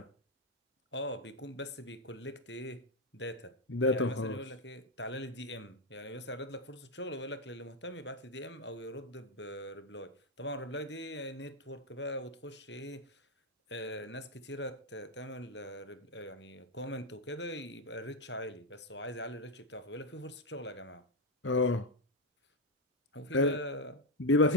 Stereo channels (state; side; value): normal; both; correlation 0.05